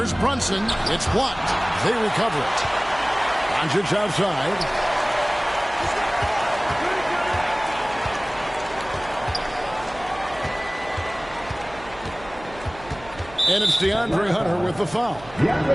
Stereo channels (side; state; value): right; noise; hum, 19 dB below the sound